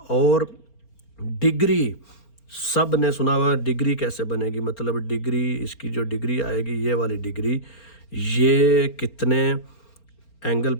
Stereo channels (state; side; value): late; right; 4.3 ms